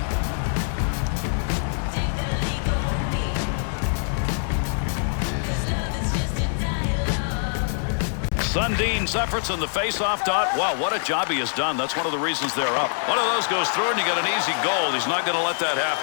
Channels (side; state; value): right; silent; digital silence